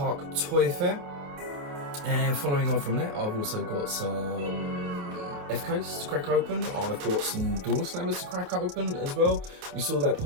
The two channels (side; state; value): left; late; 27 ms